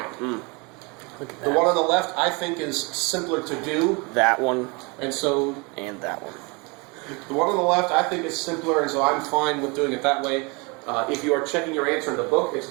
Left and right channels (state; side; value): quieter; left; 29.3 dB